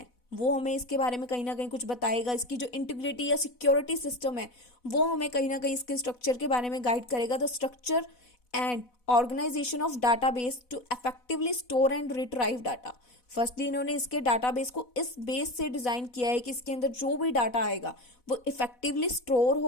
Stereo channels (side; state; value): right; late; 4.1 ms